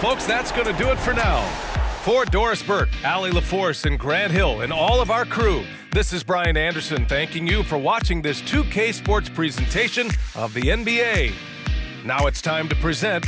that's going to do it for now. For Doris Burke, Allie LaForce, and Grant Hill, and all of our crew, This is Brian Anderson thanking you for watching this 2K Sports presentation of the NBA. Now it's time to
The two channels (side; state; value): both; identical; correlation 1.00